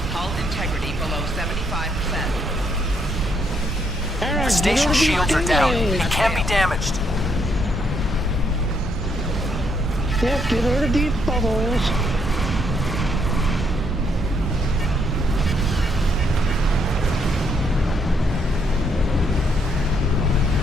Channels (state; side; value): normal; both; correlation 0.73